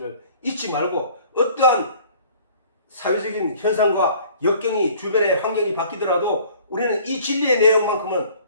잊지 말고, 어떠한 사회적인 현상과 역경이 주변의 환경이 바뀌더라도 우리는 이 진리의 내용만큼은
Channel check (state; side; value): inverted; both; correlation -0.52